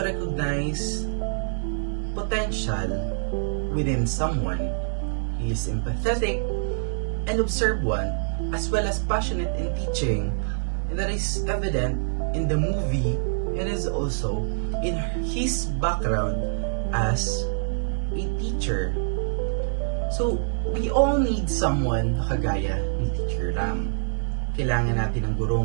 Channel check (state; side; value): silent; left; 61 dB below the other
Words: recognize potential within someone. He is empathetic and observant, as well as passionate in teaching, and that is evident in the movie and is also in his background as a teacher. So, we all need someone na kagaya ni Teacher Ram. Kailangan natin ng